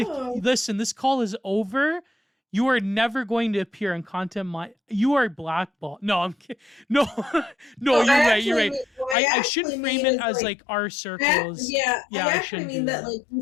no listen. This call is over. You are never going to appear on content. My you are blackballed. No, I'm kidding. No, no. no You're right. You're right. what I I shouldn't actually frame mean it is as like like our circles. I Yeah, I actually shouldn't mean do that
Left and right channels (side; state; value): right; drops out; at 9.2 s